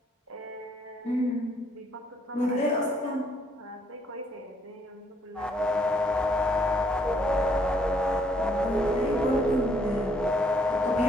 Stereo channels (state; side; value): normal; both; correlation 0.68